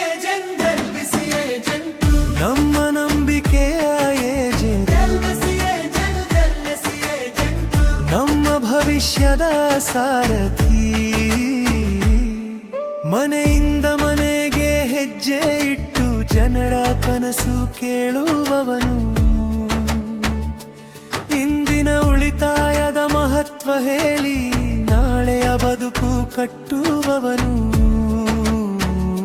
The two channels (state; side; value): identical; both; correlation 1.00